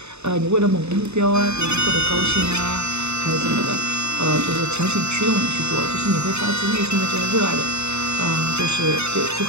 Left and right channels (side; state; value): left; late; 0.81 ms